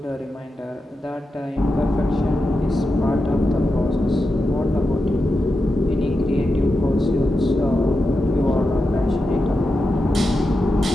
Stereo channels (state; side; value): normal; both; correlation 0.89